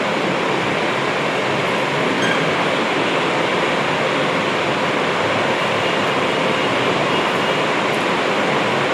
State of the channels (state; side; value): identical; both; correlation 1.00